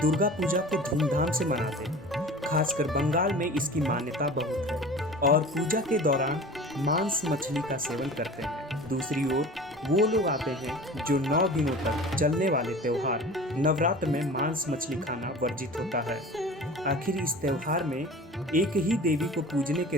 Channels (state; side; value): normal; both; correlation 0.39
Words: पूजा को धूमधाम से मनाते हैं, खासकर बंगाल में इसकी मान्यता बहुत है और पूजा के दौरान मांस मछली का सेवन करते हैं। दूसरी ओर वो लोग आते हैं जो 9 दिनों तक चलने वाले त्योहार नवरात्र में मांस मछली खाना वर्जित होता है। आखिर इस त्योहार में एक ही देवी को पूजने